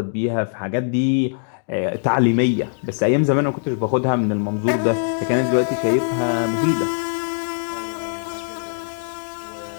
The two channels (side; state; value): right; silent; digital silence